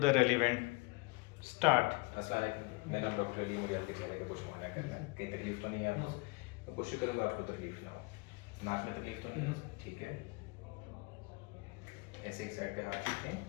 relevant. Start. अस्सलाम वालेकुम, मेरा नाम डॉक्टर अली। मुझे आपके चेहरे का कुछ मुआयना करना है। कहीं तकलीफ तो नहीं है आपको? मैं कोशिश करूँगा आपको तकलीफ ना हो। नाक में तकलीफ तो नहीं है? ठीक है। ऐसे एक साइड पे हाथ रखें।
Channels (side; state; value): right; quieter; 25.6 dB